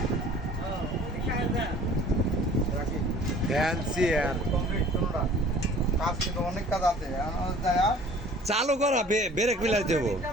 রাখি ফ্যান্সি আর কমপ্লিট কোনোটা কাজ কিন্তু অনেক কাজ আছে আমার যায় চালু করা ব্রেক মিলাই দেবো।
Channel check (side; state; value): both; normal; correlation 0.50